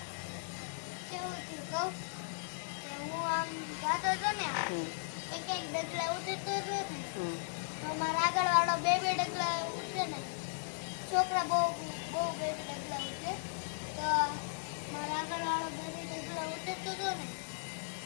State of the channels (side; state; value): right; silent; 53 dB below the other